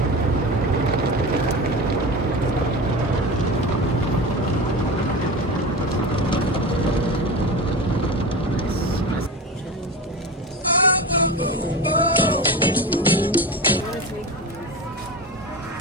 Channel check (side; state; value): both; normal; correlation 0.27